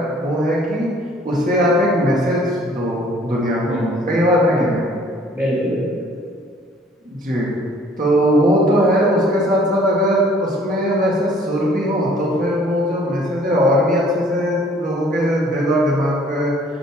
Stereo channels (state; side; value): normal; both; correlation 0.57